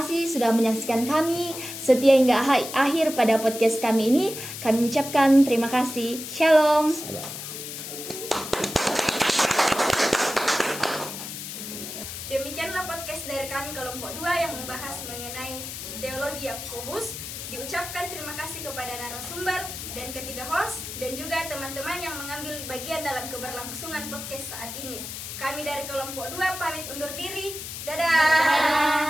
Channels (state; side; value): noise; left; hiss, 8 dB below the sound